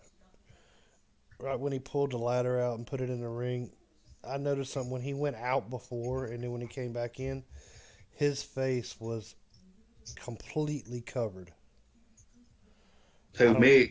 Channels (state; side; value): identical; both; correlation 1.00